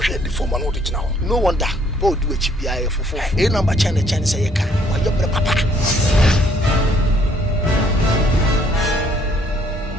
ready for my notice now. No wonder. Both do a GPI for 4. A number chance say you can. Why you're papa.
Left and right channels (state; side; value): normal; both; correlation 0.64